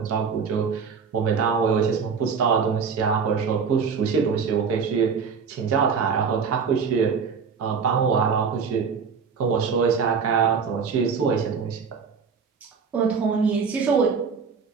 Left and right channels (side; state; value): left; quieter; 5.9 dB